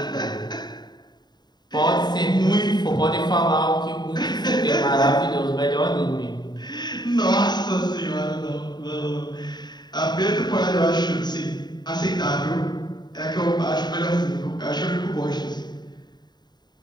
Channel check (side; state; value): right; late; 0.20 ms